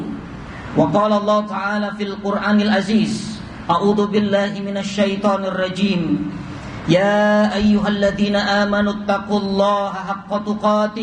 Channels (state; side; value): identical; both; correlation 1.00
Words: Wa qala Allah ta'ala fil Qur'anil Aziz, a'udzu billahi minasy syaithanir rajim. Ya ayyuhalladzina amanu taqullaha haqqa